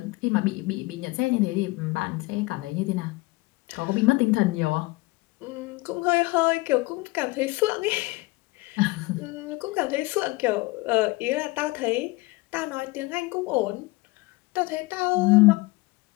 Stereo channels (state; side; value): quieter; right; 22.8 dB